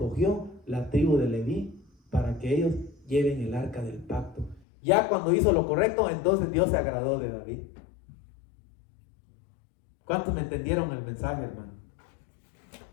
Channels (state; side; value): drops out; right; at 4.6 s